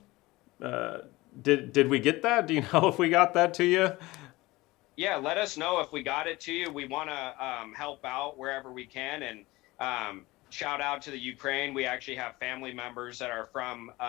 did we get that? Do you know if we got that to you? Yeah, let us know if we got it to you. We want to help out wherever we can, and shout out to the Ukraine. We actually have family members that are from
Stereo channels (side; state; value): right; quieter; 20.4 dB